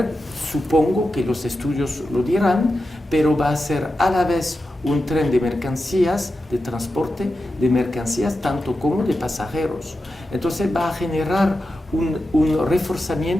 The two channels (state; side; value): normal; both; correlation 0.91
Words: supongo que los estudios lo dirán, pero va a ser a la vez un tren de mercancías, de transporte de mercancías, tanto como de pasajeros. Entonces va a generar un